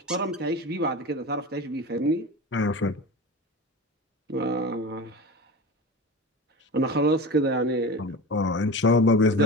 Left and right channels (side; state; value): both; normal; correlation 0.30